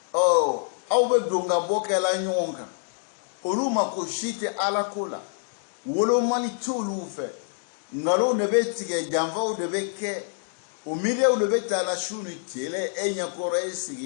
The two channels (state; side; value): silent; right; digital silence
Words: au be donga bokela nyonga oluma ko shite ala kola wolo mani tulu fe ngalo ne be tige jamva o de be ke o mire o de be ta la shuni tele enya kore